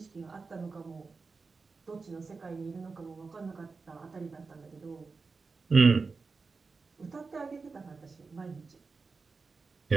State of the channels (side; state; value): left; quieter; 4.4 dB